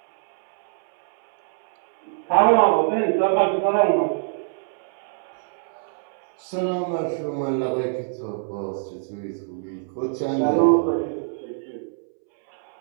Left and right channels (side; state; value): left; silent; 62 dB below the other